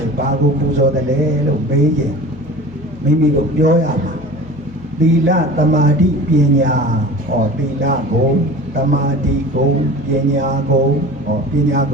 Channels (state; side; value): normal; both; correlation 0.38